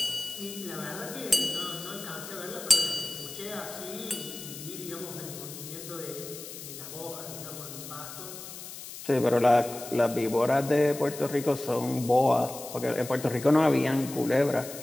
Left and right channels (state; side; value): noise; left; hiss, 12 dB below the sound